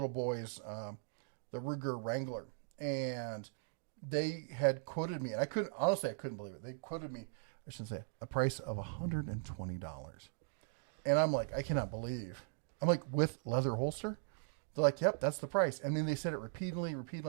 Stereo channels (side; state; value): left; silent; digital silence